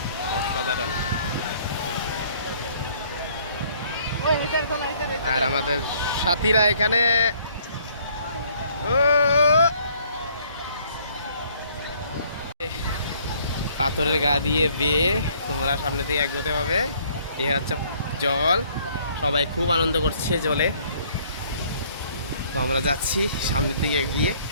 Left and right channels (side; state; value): both; inverted; correlation -0.61